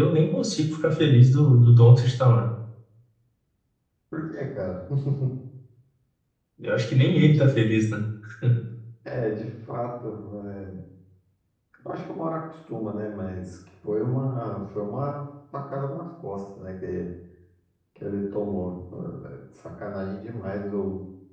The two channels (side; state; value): both; identical; correlation 1.00